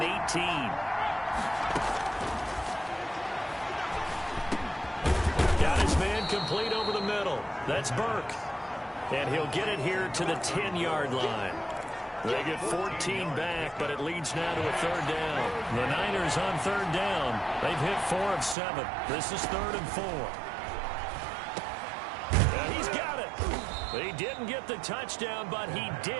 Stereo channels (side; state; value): left; drops out; at 18.6 s